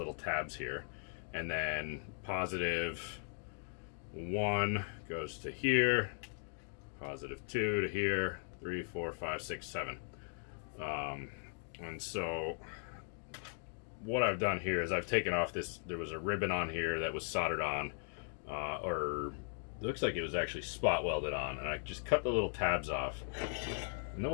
tabs here, and then positive 1 goes to here, positive 2 to here, 3, 4, 5, 6, 7. And so what I've done here is I've taken off this, there was a ribbon on here that was soldered on, or it looks like it was actually spot welded on, and I just cut the little tabs off. And then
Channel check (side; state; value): right; silent; 52 dB below the other